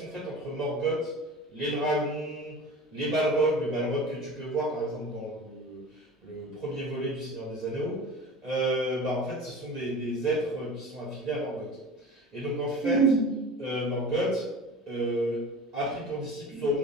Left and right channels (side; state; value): both; normal; correlation 0.37